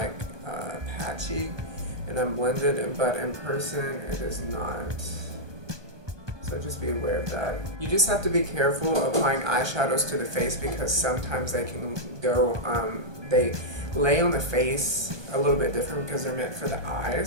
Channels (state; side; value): late; left; 1.2 ms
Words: patchy and unblended, but in person it is not. So just be aware of that. You just have to be careful applying eyeshadows to the face because sometimes they can go, they lay on the face a little bit different because they're meant for the